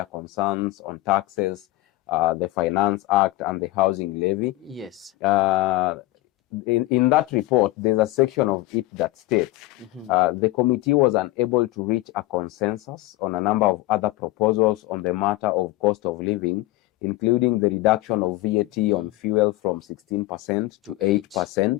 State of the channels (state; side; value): quieter; right; 18.2 dB